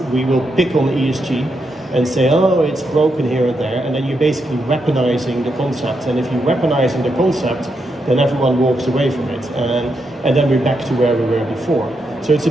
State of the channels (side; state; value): both; normal; correlation 0.82